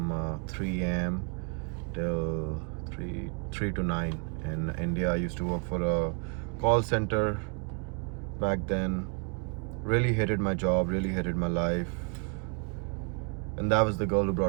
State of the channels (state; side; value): quieter; left; 39.1 dB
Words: 3 a.m. till 3 to 9 in India. I used to work for a call center back then. Really hated my job, really hated my life. And that was the girl who